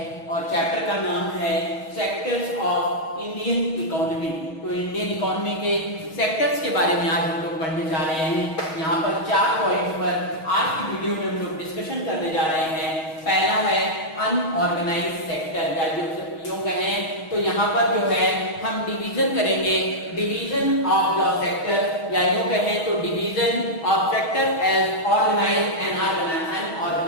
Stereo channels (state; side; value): late; right; 6.3 ms